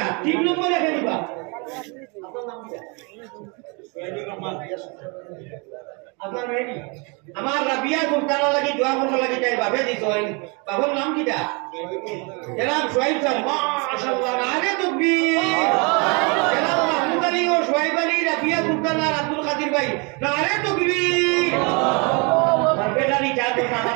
3 নম্বর রেখে দিবা আপনার রেডি আমার রাবিয়া সুলতানা লাগি দোয়া করতে লাগি চাই বাবে দিছই বাবার নাম কিটা জনাব সোহাইব স্যার মাশাআল্লাহ আরে তাকবীর জনাব মাহমুদ আলী ও সোহাইব আলী রাবিয়া সুলতানা আব্দুল কাদির ভাই নারে তাকবীর বেটারি চার তো আমার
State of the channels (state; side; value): quieter; left; 31.7 dB